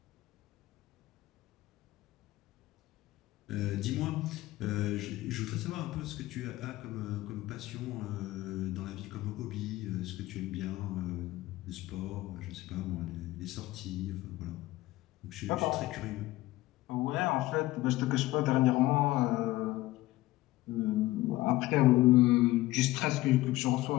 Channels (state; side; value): quieter; right; 17.6 dB